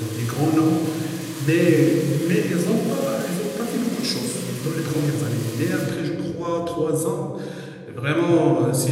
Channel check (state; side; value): identical; both; correlation 1.00